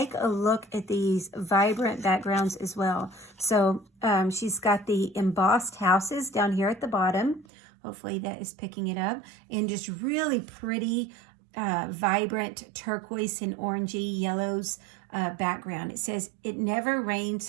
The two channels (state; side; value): drops out; left; at 7.5 s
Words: a look at these vibrant backgrounds as well. So she's got the embossed houses down here at the bottom. Hopefully that is picking it up. And just really pretty, vibrant turquoise and orangey yellows background. It says, "It never rains